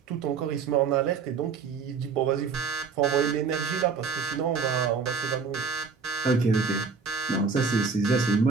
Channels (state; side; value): quieter; left; 5.3 dB